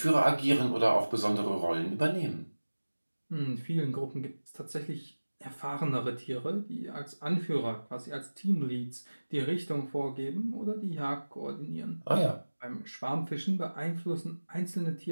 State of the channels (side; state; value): both; inverted; correlation -1.00